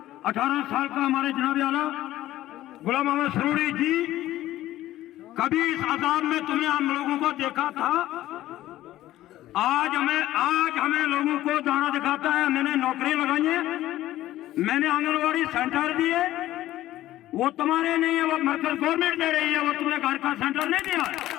18 साल का हमारे जनाब आला गुलाम मोहम्मद सरूरी जी कभी इस आजाद में तुमने हम लोगों को देखा था? आज हमें लोगों को दाना दिखाता है। मैंने नौकरी लगाई है, मैंने आंगनवाड़ी सेंटर दिए, वो तुम्हारे नहीं है, वो मरकज गवर्नमेंट दे रही है, वो तुमने घर का सेंटर नहीं दिया।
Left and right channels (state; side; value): quieter; right; 14.7 dB